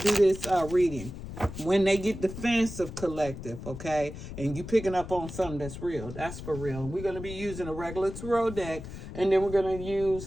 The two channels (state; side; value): noise; left; rumble, 10 dB below the sound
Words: this reading. When they get defensive collective, okay, and you picking up on something that's real, that's for real. We're going to be using a regular tarot deck, and then we're going to